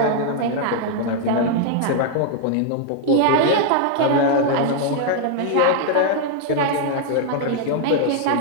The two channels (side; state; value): both; different; correlation 0.00